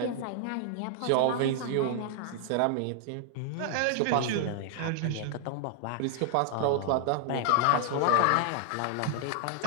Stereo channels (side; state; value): both; different; correlation 0.00